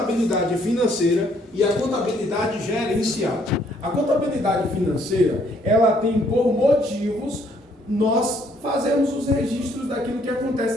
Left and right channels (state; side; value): normal; both; correlation 0.66